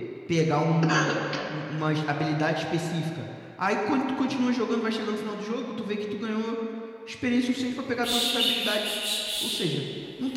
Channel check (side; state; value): both; identical; correlation 1.00